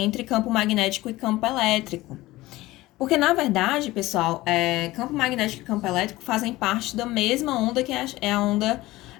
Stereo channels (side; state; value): right; quieter; 18.3 dB